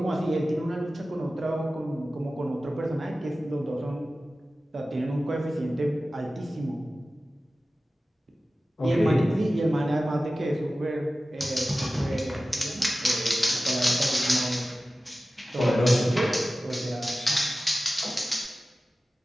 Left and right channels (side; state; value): both; normal; correlation 0.95